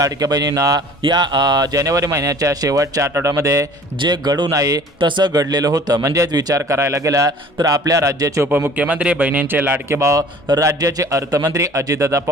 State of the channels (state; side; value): normal; both; correlation 0.48